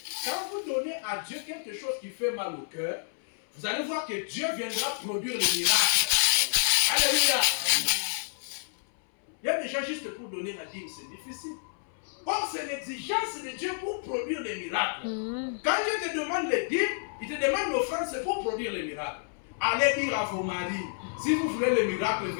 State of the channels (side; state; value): right; silent; 58 dB below the other